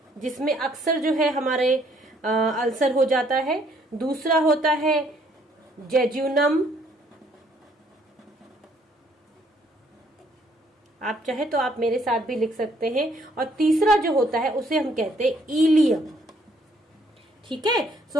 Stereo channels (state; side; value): normal; both; correlation 0.65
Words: जिसमें अक्सर जो है हमारे अल्सर हो जाता है। दूसरा होता है जेजुनम, आप चाहे तो आप मेरे साथ भी लिख सकते हैं। और तीसरा जो होता है उसे हम कहते हैं इलियम। ठीक है।